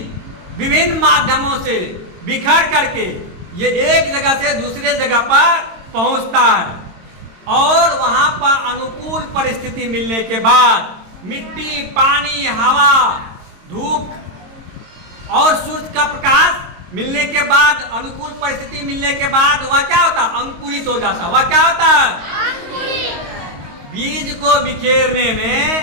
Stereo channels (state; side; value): late; left; 22 ms